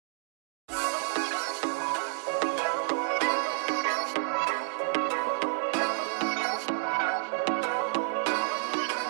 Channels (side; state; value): left; silent; 56 dB below the other